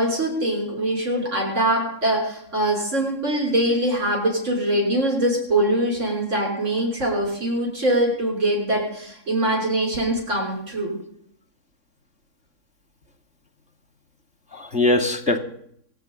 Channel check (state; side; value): late; left; 3.6 ms